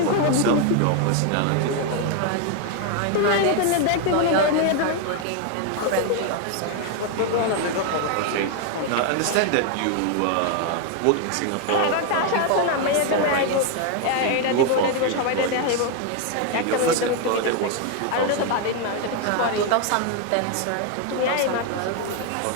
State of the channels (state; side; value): different; both; correlation 0.01